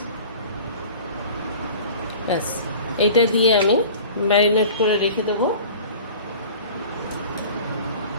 ব্যাস, এইটা দিয়ে আমি ম্যারিনেট করে রেখে দেবো।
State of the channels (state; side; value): inverted; both; correlation -0.41